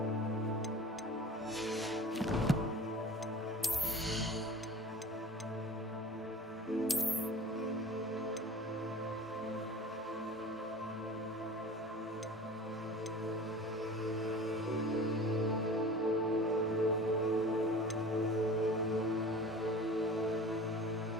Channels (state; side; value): normal; both; correlation 0.40